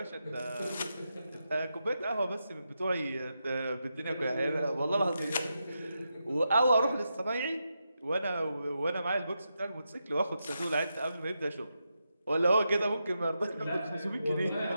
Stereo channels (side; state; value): both; inverted; correlation -0.86